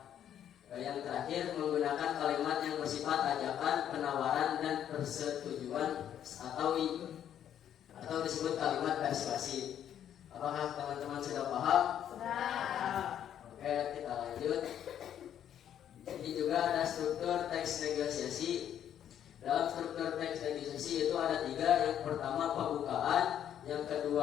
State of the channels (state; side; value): quieter; right; 10.0 dB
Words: Yang terakhir, menggunakan kalimat yang bersifat ajakan, penawaran, dan persetujuan atau disebut kalimat persuasif. Apakah teman-teman sudah paham? Sudah. Oke, kita lanjut. Ini juga ada struktur teks negosiasi. Dalam struktur teks negosiasi itu ada 3. Yang pertama pembukaan, yang